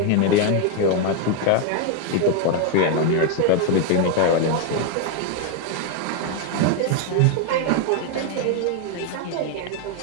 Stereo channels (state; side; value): different; both; correlation 0.01